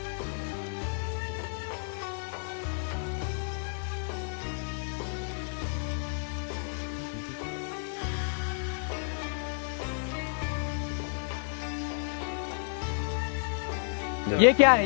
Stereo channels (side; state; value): right; silent; digital silence